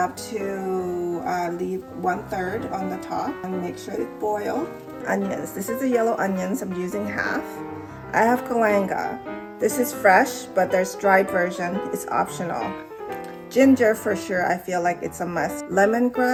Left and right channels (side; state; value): both; identical; correlation 1.00